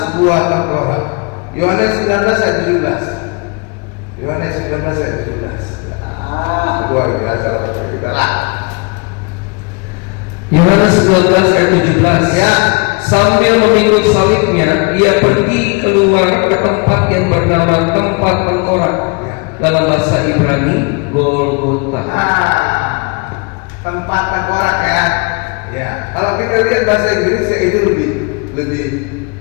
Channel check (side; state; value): right; quieter; 30.7 dB